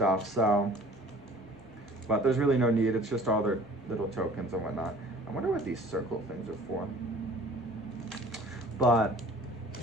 so, but there's really no need. It's just all their little tokens and whatnot. I wonder what these circle things are for. But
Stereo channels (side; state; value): both; normal; correlation 0.48